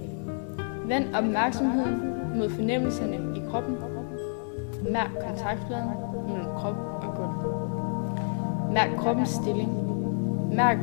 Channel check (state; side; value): silent; right; digital silence